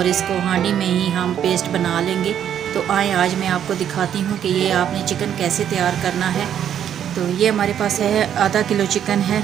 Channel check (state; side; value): quieter; left; 9.5 dB